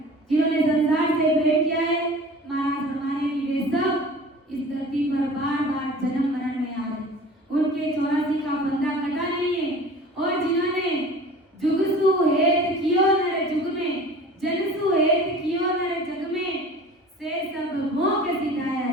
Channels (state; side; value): normal; both; correlation 0.42